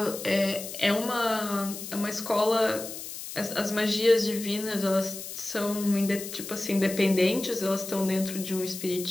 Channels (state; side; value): noise; left; hiss, 9 dB below the sound